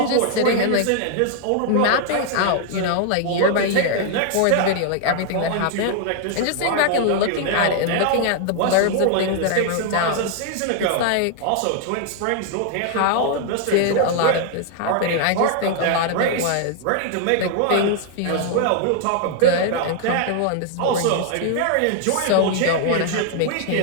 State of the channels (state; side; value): different; both; correlation 0.00